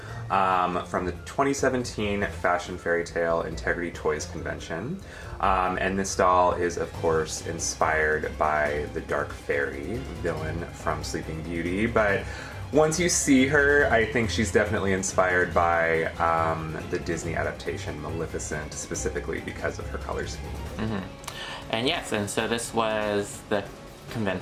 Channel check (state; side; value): identical; both; correlation 1.00